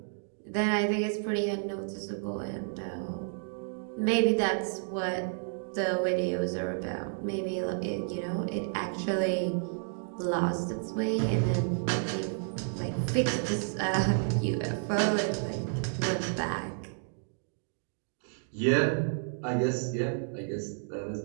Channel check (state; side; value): silent; left; digital silence